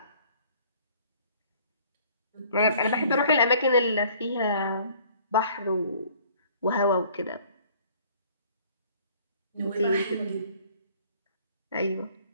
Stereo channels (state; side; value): inverted; both; correlation -0.55